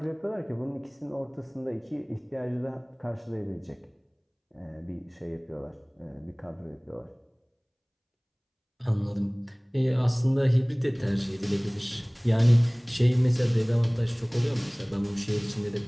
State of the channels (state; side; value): identical; both; correlation 1.00